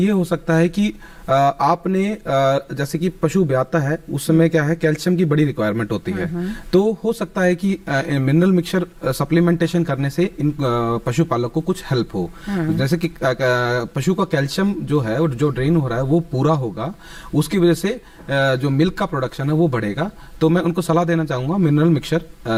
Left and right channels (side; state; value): both; identical; correlation 1.00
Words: हो सकता है कि आपने जैसे कि पशु ब्याता है उस समय क्या है, कैल्शियम की बड़ी रिक्वायरमेंट होती है, तो हो सकता है कि मिनरल मिक्सचर सप्लीमेंटेशन करने से इन पशुपालक को कुछ हेल्प हो, जैसे कि पशु का कैल्शियम जो है जो ड्रेन हो रहा है वो पूरा होगा, उसकी वजह से जो मिल्क का प्रोडक्शन है वो बढ़ेगा। तो मैं उनको सलाह देना चाहूंगा मिनरल